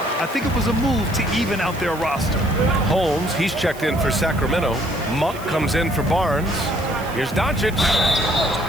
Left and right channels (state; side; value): noise; right; hiss, 19 dB below the sound